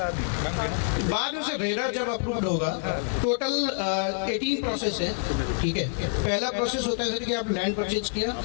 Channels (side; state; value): right; silent; digital silence